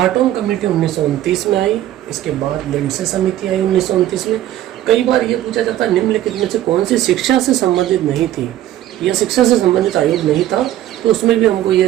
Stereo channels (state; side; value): quieter; left; 13.2 dB